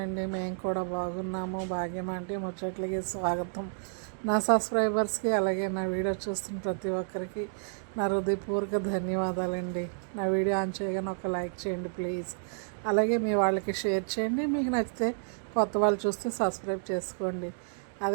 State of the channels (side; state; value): left; silent; digital silence